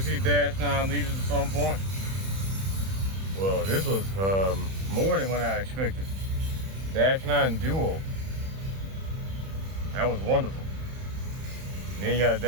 see Dash9 leaders at some point. Well, this was more than what I expected. Dash9 Duo. That was wonderful. And then you got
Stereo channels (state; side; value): late; left; 31 ms